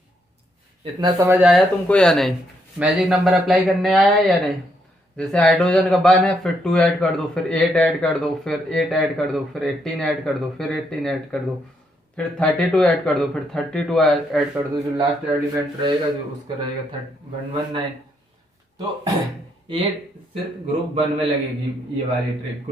इतना समझ आया तुमको या नहीं, मैजिक नंबर अप्लाई करने आया या नहीं। जैसे हाइड्रोजन का 1 है, फिर 2 ऐड कर दो, फिर 8 ऐड कर दो, फिर 8 ऐड कर दो, फिर 18 ऐड कर दो, फिर 18 ऐड कर दो, फिर 32 ऐड कर दो, फिर 32 ऐड कर दो, जो लास्ट एलिमेंट रहेगा जो उसका रहेगा 119। तो ये सिर्फ ग्रुप 1 में लगेगी ये वाली ट्रिक।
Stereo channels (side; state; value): both; normal; correlation 0.76